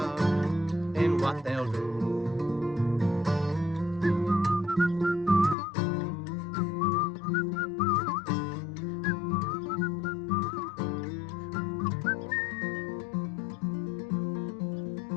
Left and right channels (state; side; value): drops out; right; at 5.6 s